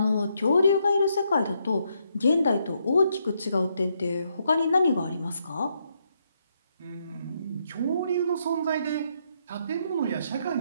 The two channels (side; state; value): both; inverted; correlation -0.76